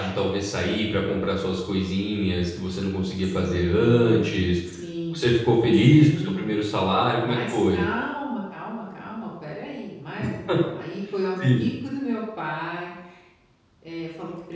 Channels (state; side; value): identical; both; correlation 1.00